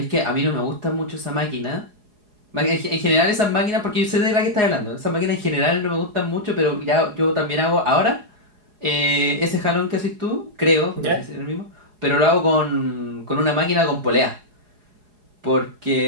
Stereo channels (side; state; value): left; late; 4.8 ms